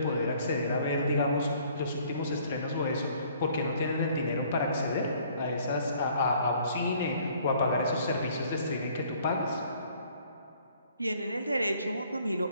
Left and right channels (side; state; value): both; inverted; correlation -0.59